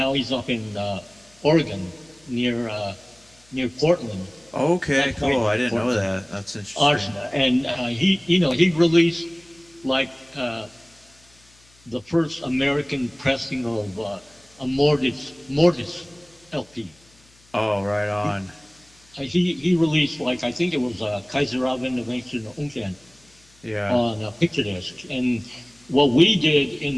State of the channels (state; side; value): noise; left; hum, 30 dB below the sound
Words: Oregon near Portland. Okay, cool. I didn't know that. That's interesting. Archon, and he released like the first American pressing of a Mortis LP. Oh, right on. He released, like, I think it was Kaiser auf Innovation Unken on a picture disc. And what we did